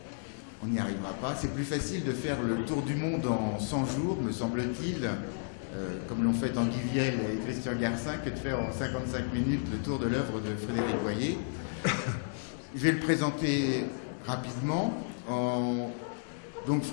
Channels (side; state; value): right; silent; 56 dB below the other